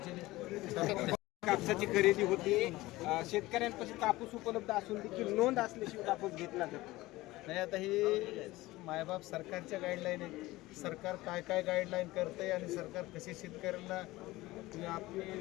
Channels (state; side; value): quieter; right; 18.9 dB